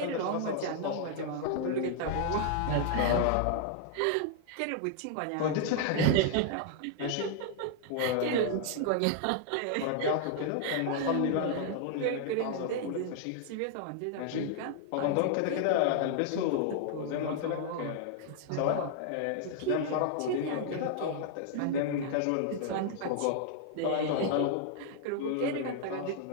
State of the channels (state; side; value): different; both; correlation 0.00